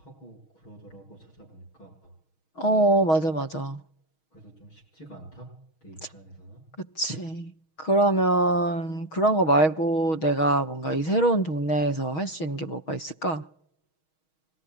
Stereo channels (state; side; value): late; right; 6.3 ms